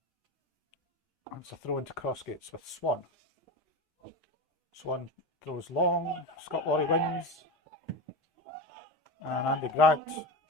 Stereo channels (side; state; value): both; normal; correlation 0.22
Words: It's a throw into Crossgates with Swan. Swan throws long. Scott Laurie wins. And Andy Grant